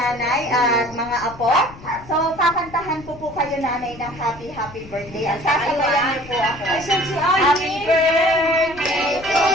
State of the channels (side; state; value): left; noise; rumble, 18 dB below the sound